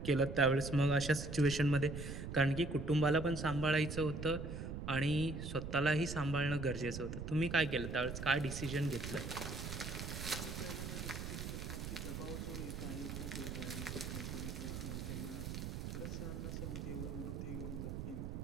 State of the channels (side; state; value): right; noise; rumble, 6 dB below the sound